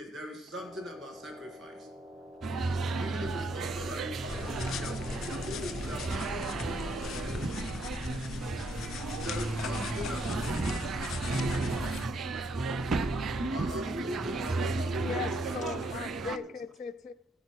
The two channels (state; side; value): normal; both; correlation 0.71